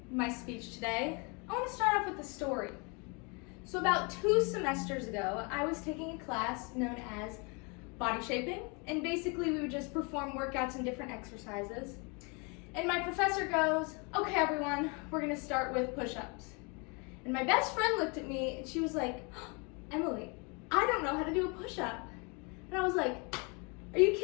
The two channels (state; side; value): quieter; right; 31.9 dB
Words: my speech today, I want to start off with a story. So about 2 semesters ago, I was taking a class known as body shaping, and basically we would just perform workouts and different exercises. And my professor goes, "Okay everyone, we're going to start with push-ups." And my best friend looked at me and she was like, "Emily, I don't know how to do a push-up." And I was like, "Are you